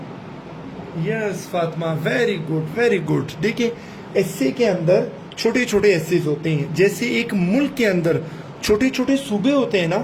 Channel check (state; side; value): identical; both; correlation 1.00